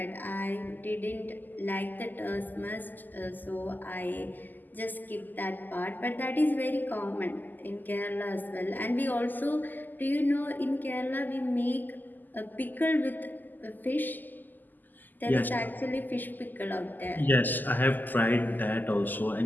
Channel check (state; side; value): late; right; 0.086 ms